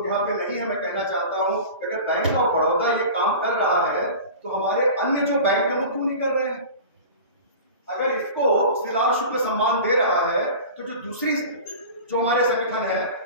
यहाँ पे नहीं है। मैं कहना चाहता हूँ अगर बैंक ऑफ बड़ौदा ये काम कर रहा है तो हमारे अन्य जो बैंक है वो क्यों नहीं कर रहे हैं? अगर इसको श्रीलाल शुक्ल सम्मान दे रहा है तो जो दूसरी जो हमारे संगठन है,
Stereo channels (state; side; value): inverted; both; correlation -0.36